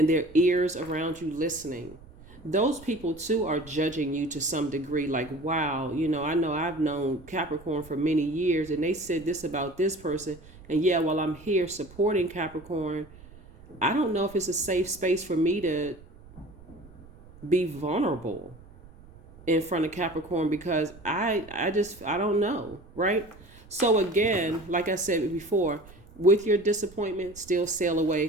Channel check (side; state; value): right; noise; rumble, 21 dB below the sound